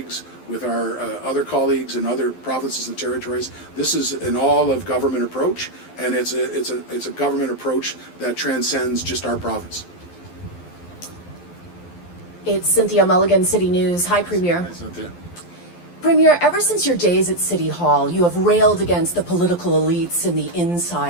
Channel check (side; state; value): right; late; 12 ms